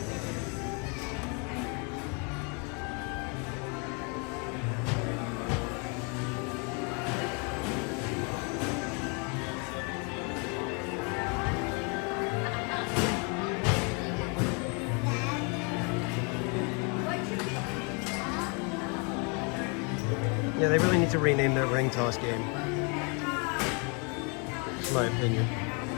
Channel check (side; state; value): right; quieter; 34.5 dB